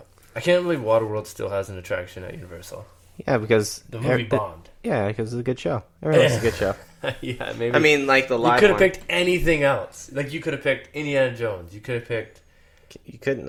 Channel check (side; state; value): both; identical; correlation 1.00